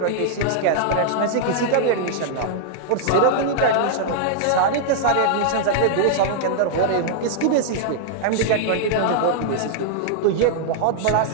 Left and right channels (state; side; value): different; both; correlation -0.01